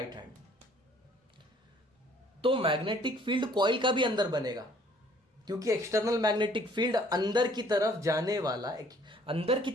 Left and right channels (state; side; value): normal; both; correlation 0.58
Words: hand. तो मैग्नेटिक फील्ड कॉइल का भी अंदर बनेगा, क्योंकि एक्सटर्नल मैग्नेटिक फील्ड अंदर की तरफ